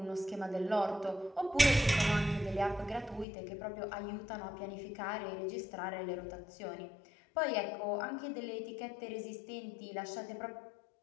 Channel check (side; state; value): right; drops out; at 3.2 s